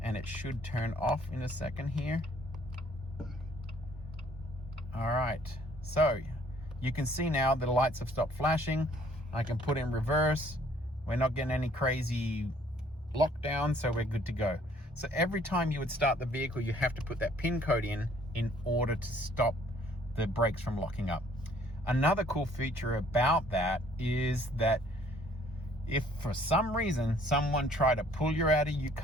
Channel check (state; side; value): normal; both; correlation 0.60